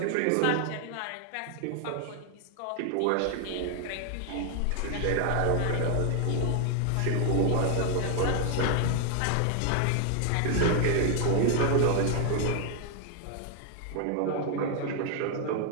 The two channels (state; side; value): different; both; correlation 0.00